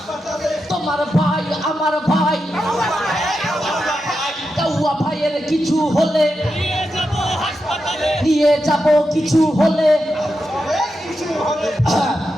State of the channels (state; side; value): normal; both; correlation 0.88